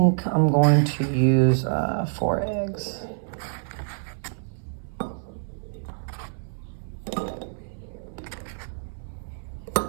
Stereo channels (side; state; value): left; silent; 61 dB below the other